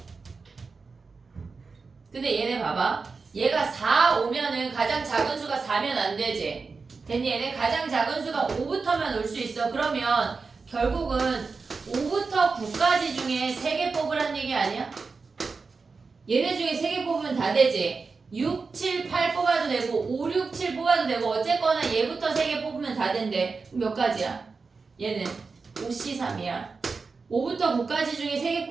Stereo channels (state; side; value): quieter; left; 4.5 dB